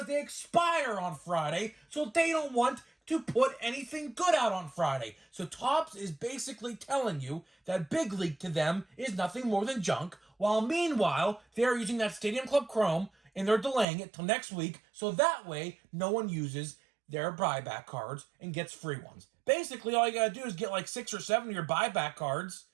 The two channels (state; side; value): drops out; left; at 13.9 s